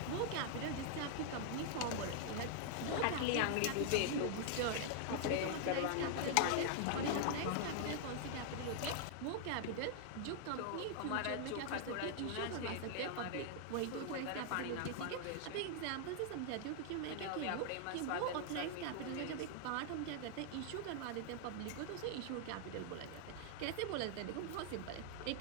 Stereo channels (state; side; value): different; both; correlation 0.00